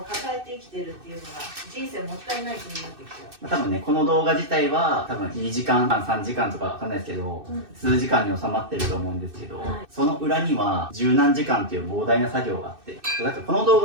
抱えて生きてるっていうのが人生もったいない気になってきちゃう。多分ね、この動画自体は多分2時間半、3時間とかわかんないですけど、数時間に収まってると思うんですけど、その裏には十何時間っていう膨大な作業があって、だからこの動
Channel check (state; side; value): late; left; 2.6 ms